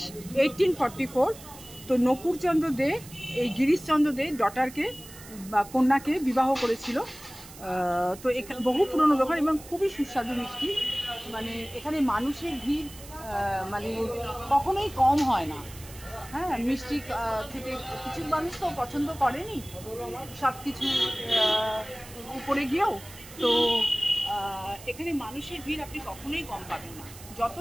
1844। তো নকুলচন্দ্র দে এই গিরিশচন্দ্র দে ডটারকে বা কন্যাকে বিবাহ করেছিল। তো এখানে বহু পুরনো দোকান এবং খুবই সুস্বাদু মিষ্টি। মানে এখানে মানুষের ভিড় মানে কখনোই কম হয় না। হ্যাঁ, মিষ্টি থেকে কিছু মানুষ তো পছন্দ করেনি সব কিছু উপরে গিয়েও। তো এখানে মানুষের ভিড় আপনি কখনোই কম পাবেন না।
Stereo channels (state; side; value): noise; right; hiss, 17 dB below the sound